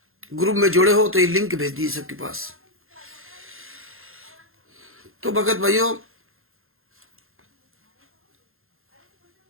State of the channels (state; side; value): late; left; 0.61 ms